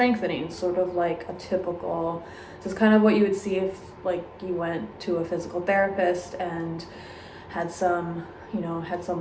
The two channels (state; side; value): identical; both; correlation 1.00